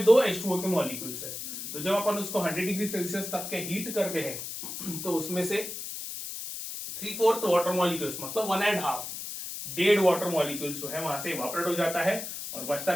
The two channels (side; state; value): left; noise; hiss, 7 dB below the sound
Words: 2 H2O के मॉलिक्यूल्स है। तो जब अपन उसको 100 डिग्री सेल्सियस तक के हीट करते हैं तो उसमें से 3/4 वाटर मॉलिक्यूल्स मतलब 1.5 डेड वाटर मॉलिक्यूल जो है वहां से इवापोरेट हो जाता है और